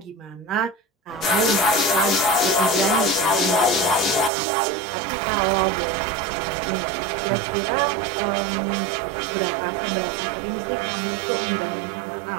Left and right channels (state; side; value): drops out; left; at 4.3 s